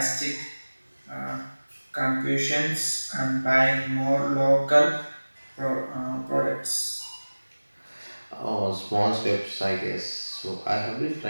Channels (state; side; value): inverted; both; correlation -1.00